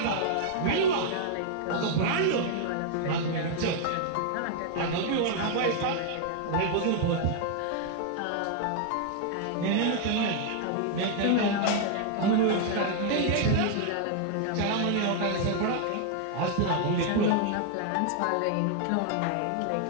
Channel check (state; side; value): different; both; correlation 0.00